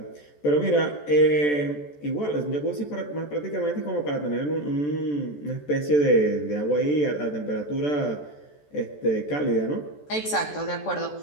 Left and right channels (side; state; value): right; late; 14 ms